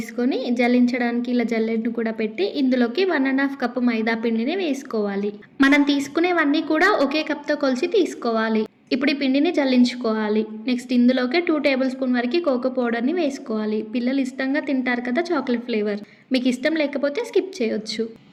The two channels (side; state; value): both; identical; correlation 1.00